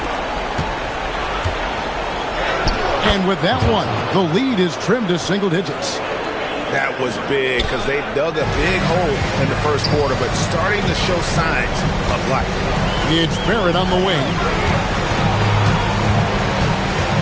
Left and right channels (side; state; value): both; identical; correlation 1.00